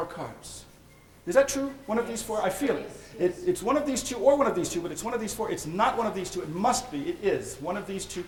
cards. Is that true? One of these 4? I feel it. It's one of these 2 or one of these 2, but it's one of these 4. It's not one of these 2. It must be. It is one of these 2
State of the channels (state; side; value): identical; both; correlation 1.00